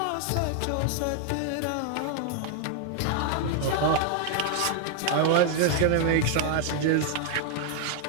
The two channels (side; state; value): both; different; correlation 0.00